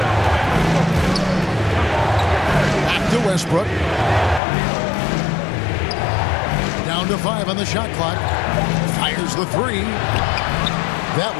Back to Westbrook. Down to 5 on the shot clock. Fires the 3. That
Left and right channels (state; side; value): drops out; right; at 4.4 s